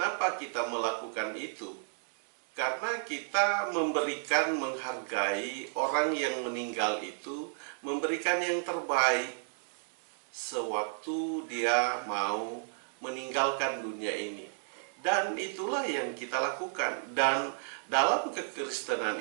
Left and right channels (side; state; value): left; silent; digital silence